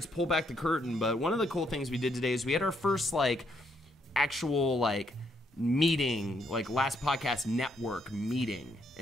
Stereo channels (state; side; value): normal; both; correlation 0.74